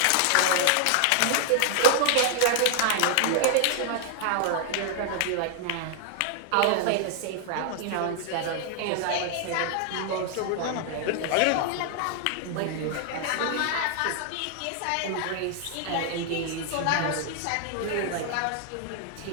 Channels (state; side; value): different; both; correlation 0.00